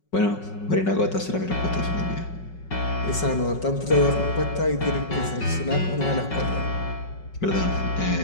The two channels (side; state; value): right; late; 5.4 ms